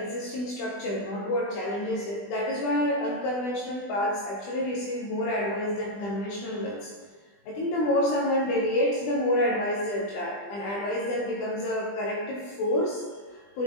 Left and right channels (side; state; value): right; late; 20 ms